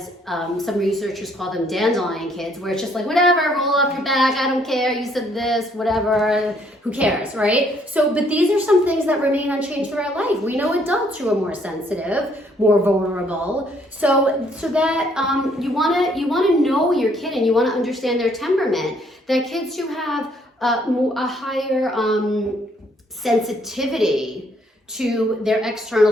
some researchers call them dandelion kids, where it's just like, whatever, roll up your back, I don't care, you said this, whatever, who cares, right? So, but these are some things that remain unchanged throughout life. We know adults who are more sensitive, more vulnerable. So that you wanna know your kid, and you wanna understand their temperament. That kids who have a higher sensitivity to their external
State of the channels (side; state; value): both; normal; correlation 0.66